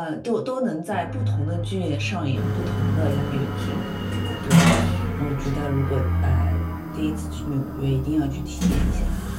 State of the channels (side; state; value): both; identical; correlation 1.00